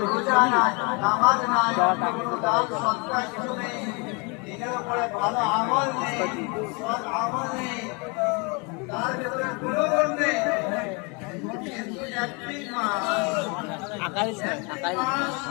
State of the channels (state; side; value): quieter; right; 31.2 dB